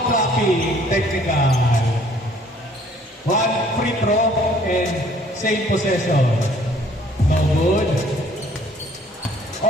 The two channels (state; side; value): normal; both; correlation 0.58